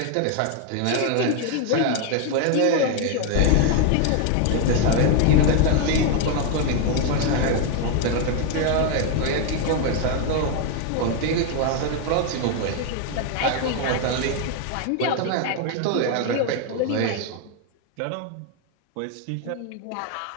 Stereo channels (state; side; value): different; both; correlation 0.01